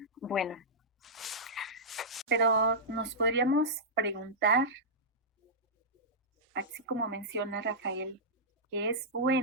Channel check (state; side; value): normal; both; correlation -0.12